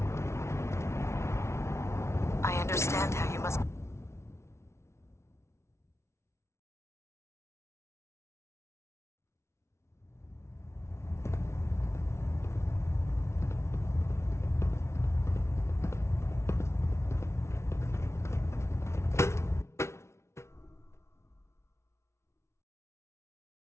I understand how you must...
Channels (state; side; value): late; right; 0.13 ms